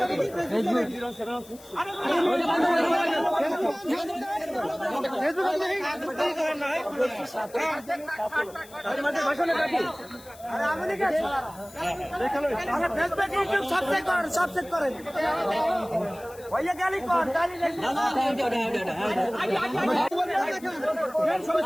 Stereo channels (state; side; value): noise; left; hiss, 22 dB below the sound